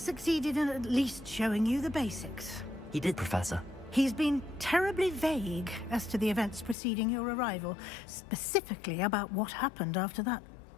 in at least showing you the basics. He did, Professor. He's been terribly vague as to the events preceding your arrival, specifically about what happened after that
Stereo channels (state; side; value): drops out; right; at 6.8 s